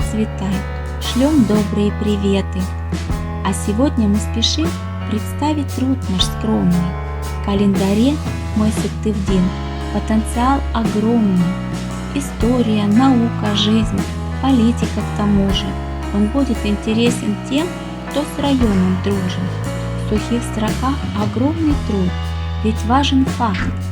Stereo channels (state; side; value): identical; both; correlation 1.00